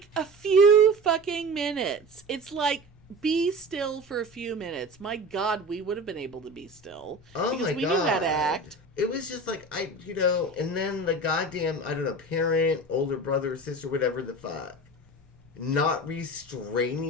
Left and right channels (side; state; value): both; normal; correlation 0.33